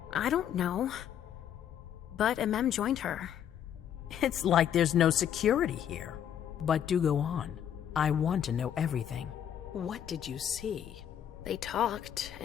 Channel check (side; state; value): right; quieter; 9.6 dB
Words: I don't know, but Mem joined her. It's like there's no security here. But do go on. I want to know everything. What did you see? They talked,